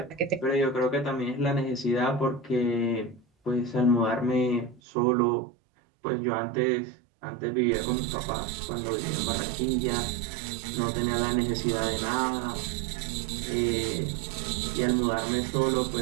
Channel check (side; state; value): left; drops out; at 4.8 s